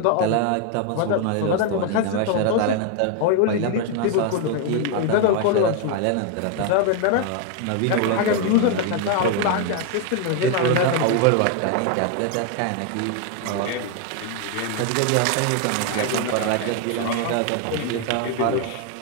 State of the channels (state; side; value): different; both; correlation 0.01